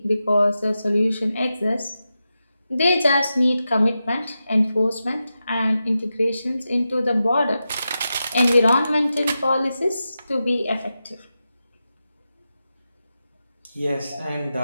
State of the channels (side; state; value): both; inverted; correlation -0.90